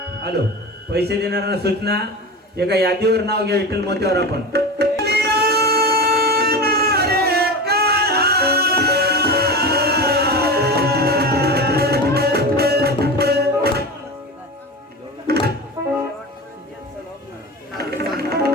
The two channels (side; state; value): both; normal; correlation 0.27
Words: हॅलो, पैसे देणाऱ्यांना सूचना, एका यादीवर नाव घ्या विठ्ठल मोत्यावर आपण.